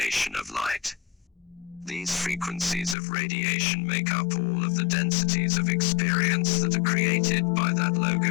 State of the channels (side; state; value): right; drops out; at 3.0 s